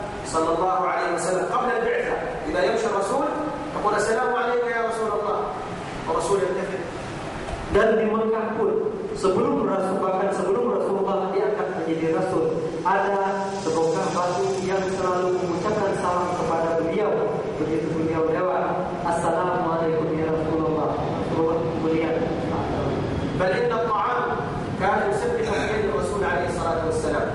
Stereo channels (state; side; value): identical; both; correlation 1.00